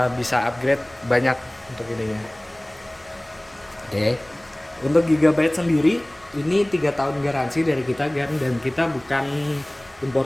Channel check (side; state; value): right; noise; rumble, 29 dB below the sound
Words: bisa upgrade banyak untuk ininya. Oke. Untuk Gigabyte sendiri ini 3 tahun garansi dari kita kan, dan kita bukan